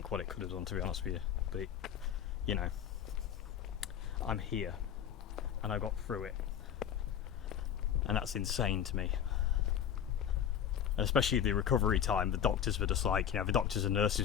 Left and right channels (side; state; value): right; quieter; 9.2 dB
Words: what it could have done, to be honest with you, but I'm here, and I got through it, and that's insane to me. And especially the recovery time, the doctors were just like, the doctors and